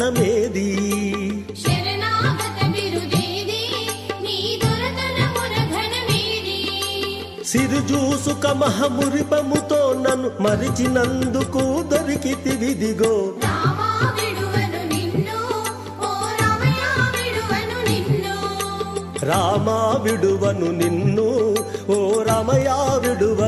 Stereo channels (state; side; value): identical; both; correlation 1.00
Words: శరణాగత బిరుదేది నీ దొరతనమున ఘనమేది సిరుజూసుక మహమురిపముతో నన్ను మరిచినందుకు దొరికితివిదిగో రామా విడువను నిన్ను ఓ రమయ విడువను నిన్ను రామా విడువను నిన్ను ఓ రమయ